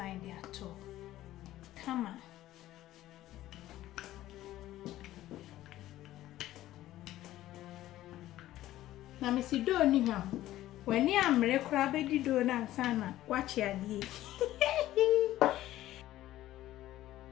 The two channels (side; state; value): right; quieter; 14.6 dB